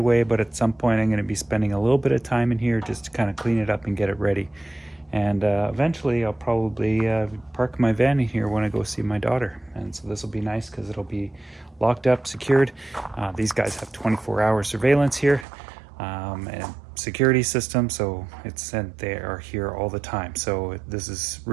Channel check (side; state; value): left; drops out; at 15.5 s